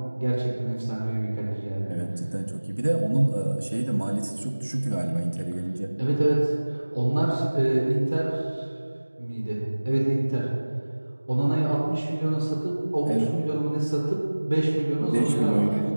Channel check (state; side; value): inverted; both; correlation -1.00